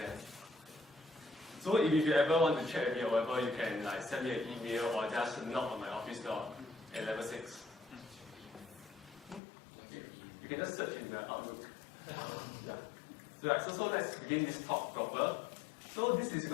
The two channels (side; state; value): right; drops out; at 9.4 s